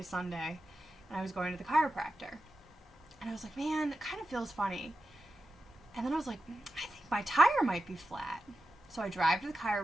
And I was going to the chiropractor. And I was like, man, it kind of feels funny. And then I was like, I think my tire might be flat. So I drive to the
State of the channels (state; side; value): normal; both; correlation 0.91